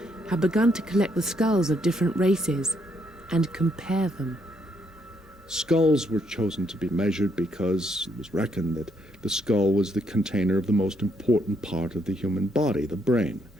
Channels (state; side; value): normal; both; correlation 0.73